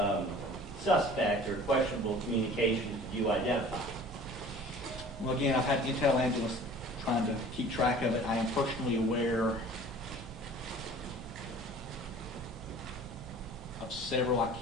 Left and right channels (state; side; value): normal; both; correlation 0.46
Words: suspect or questionable communications do you identify? Well, again, I've had intel analysts trying to keep track of it. I am personally aware of several. I